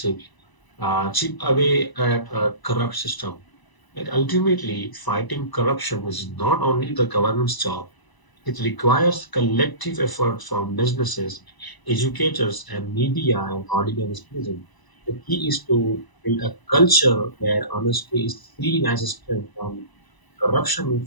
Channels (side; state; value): right; late; 1.0 ms